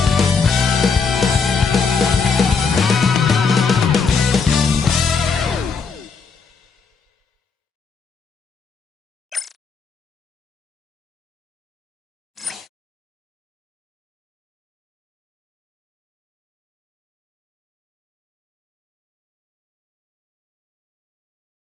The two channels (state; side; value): quieter; right; 5.2 dB